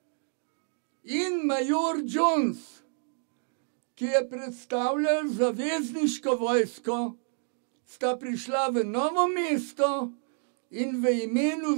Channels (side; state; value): left; silent; 59 dB below the other